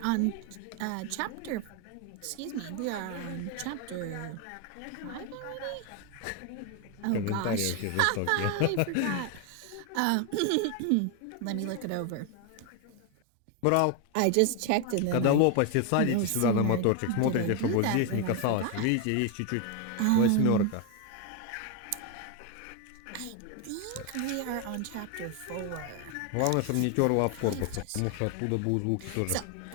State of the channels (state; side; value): different; both; correlation 0.01